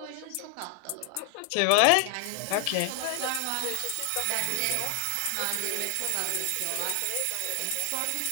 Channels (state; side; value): different; both; correlation 0.00